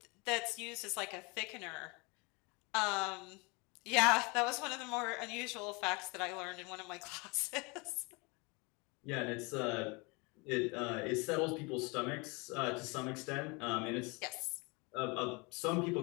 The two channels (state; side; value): quieter; right; 28.4 dB